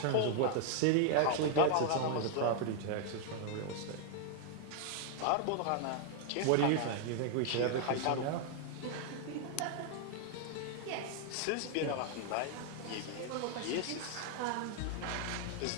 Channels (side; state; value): both; different; correlation 0.00